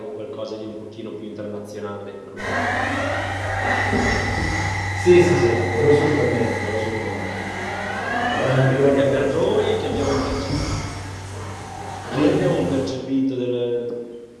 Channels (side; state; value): both; identical; correlation 1.00